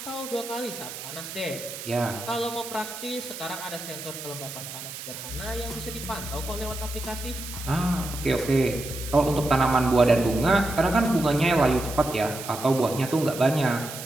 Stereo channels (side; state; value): right; noise; hiss, 10 dB below the sound